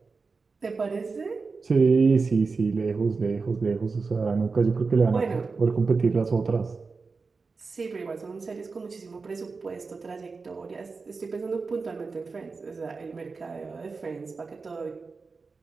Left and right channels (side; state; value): left; quieter; 4.4 dB